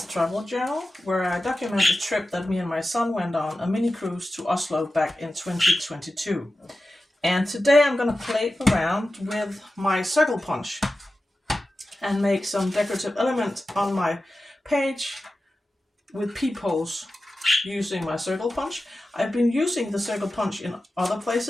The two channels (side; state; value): both; normal; correlation 0.94